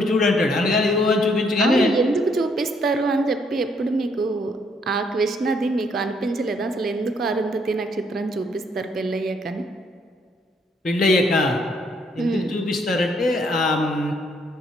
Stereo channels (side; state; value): both; normal; correlation 0.69